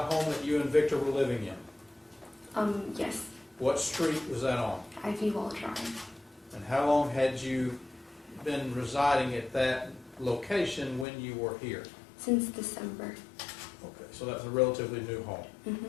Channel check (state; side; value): drops out; right; at 11.1 s